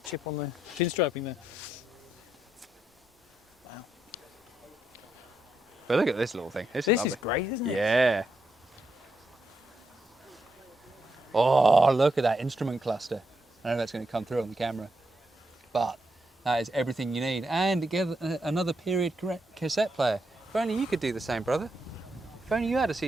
chip on the pinstriping there. Wow. But look at this little thing. This is This lovely. is great, isn't it? Yeah. Oh, look at that instrument cluster. I don't know if that's going to come through on the camera, but that is everything you need. And again, another period cassette player. If only you could do the same, brother. If only you had a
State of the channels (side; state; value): both; normal; correlation 0.81